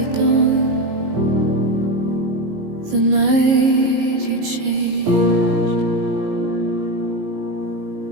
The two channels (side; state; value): left; late; 19 ms